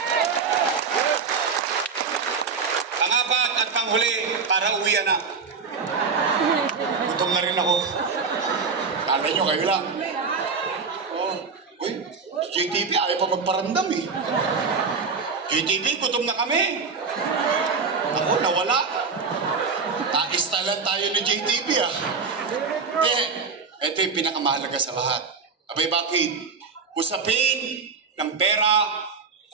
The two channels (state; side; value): quieter; left; 5.1 dB